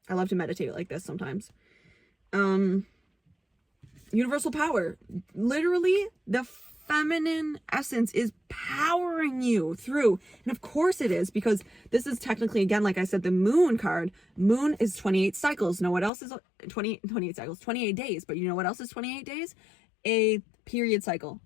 I love to meditate like this sometimes. Universal power. Literally, the feminine essence is powering you through. And of course it is, because this is technically, again, like I said, the moon card. Moon is 28 cycles. Know what else is 28 cycles? 28 days. But you know what else is 28 days? A period cycle,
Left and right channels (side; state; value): right; drops out; at 16.1 s